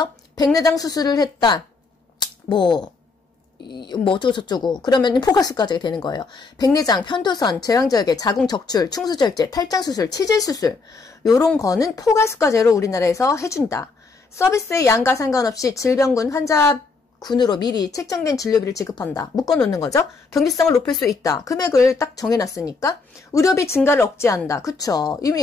백내장 수술을 했다. 뭐 어쩌고 저쩌고. 그러면 포괄수가제가 되는 거예요. 백내장, 편도선, 제왕절개, 자궁적출, 충수절제, 탈장수술, 치질수술 요런 거는 포괄수가제로 우리나라에서 해준다. 서비스의 양과 상관없이 질병군 환자군으로 미리 책정된 진료비를 지급한다. 묶어놓는 거죠. 경제성을 높일 수 있다. 금액을 딱 정해놨으니까. 의료비 증가를 억제한다. 그쵸.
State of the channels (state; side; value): quieter; right; 4.2 dB